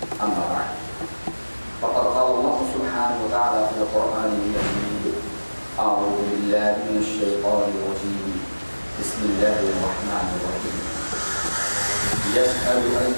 أما بعد فقد قال الله سبحانه وتعالى في القرآن المجيد أعوذ بالله من الشيطان الرجيم بسم الله الرحمن الرحيم يسأل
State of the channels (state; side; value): inverted; both; correlation -1.00